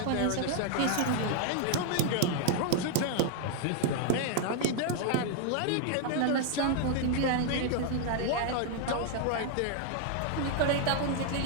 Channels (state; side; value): different; both; correlation 0.00